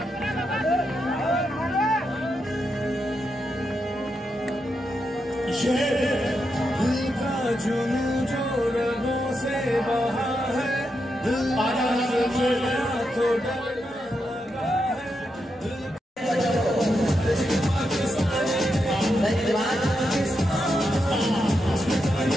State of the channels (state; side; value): normal; both; correlation 0.85